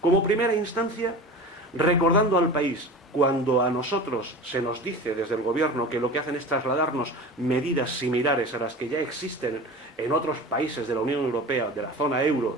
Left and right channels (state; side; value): normal; both; correlation 0.34